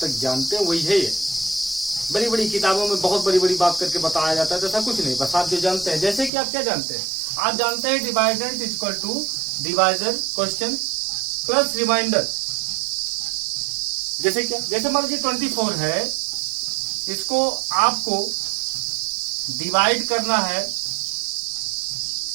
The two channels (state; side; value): drops out; left; at 6.3 s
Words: जानते हैं वही है ये। बड़ी बड़ी किताबों में बहुत बड़ी बड़ी बात करके बताया जाता है, तो ऐसा कुछ नहीं, बस आप जो जानते हैं। जैसे कि आप क्या जानते हैं, आप जानते हैं dividend is equal to divisor question plus remainder. जैसे क्या, जैसे मान लीजिए 24 है, इसको आपको डिवाइड करना है,